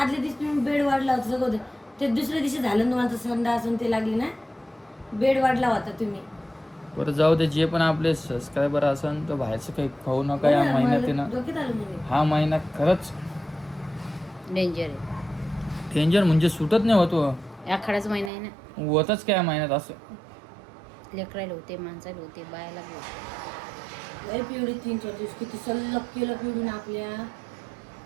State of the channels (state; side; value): drops out; left; at 18.3 s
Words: दिवशी तुम्ही बेड वाढला होता सगळं होतं. ते दुसऱ्या दिवशी झालं ना तुम्हाला संडास असून ते लागली ना, बेड वाढला होता तुम्ही. बरं जाऊ दे. जे पण आपले सबस्क्रायबर असन तर बाहेरचं काही खाऊ नका या महिन्यात आहे ना. डोक्यात आलं म्हणजे. हा महिना खरंच डेंजर आहे. डेंजर म्हणजे सुटत नाही होतो. आखाडाच महिना आहे ना. होतच काय महिन्यात असं. लेकरायला होते, माणसाला होते, बायाला बी होते. लय पिवडी 3-4 दिवस किती सल्लग केलं पिवडीनं आपल्या.